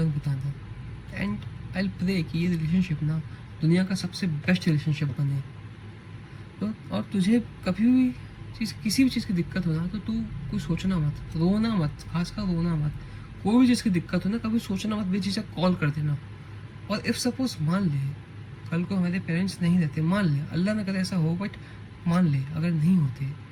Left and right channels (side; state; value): both; identical; correlation 1.00